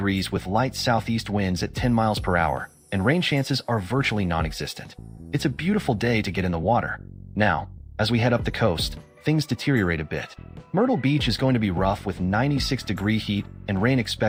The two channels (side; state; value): both; identical; correlation 1.00